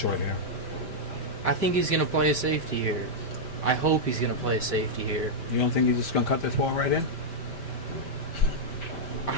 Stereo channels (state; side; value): late; right; 5.1 ms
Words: here. I think he's gonna play a safety here. I hope he's gonna play a safety here. You don't think he's just going to cut this ball right in?